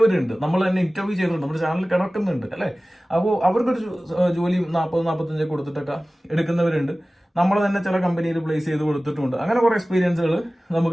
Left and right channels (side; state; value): both; normal; correlation 0.97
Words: നമ്മൾ തന്നെ ഇന്റർവ്യൂ ചെയ്തിട്ടുണ്ട്, നമ്മുടെ ചാനലിൽ കിടക്കുന്നുണ്ട് അല്ലേ. അപ്പോൾ അവർക്കൊരു ജോലി 40-45 കൊടുത്തിട്ടൊക്കെ എടുക്കുന്നവരുണ്ട്. നമ്മൾ തന്നെ ചില കമ്പനിയിൽ പ്ലേസ് ചെയ്ത് കൊടുത്തിട്ടുണ്ട്. അങ്ങനെ കുറേ എക്സ്പീരിയൻസുകൾ